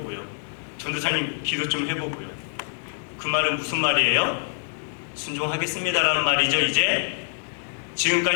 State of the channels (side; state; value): right; silent; 62 dB below the other